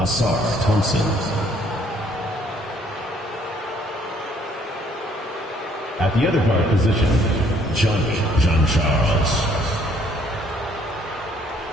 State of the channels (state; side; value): normal; both; correlation 0.64